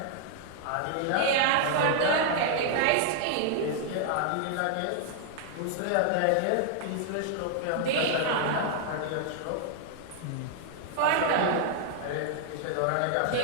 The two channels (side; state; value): both; different; correlation 0.00